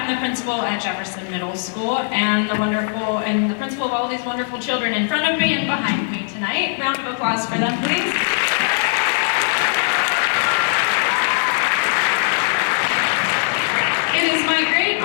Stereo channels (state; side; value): silent; right; digital silence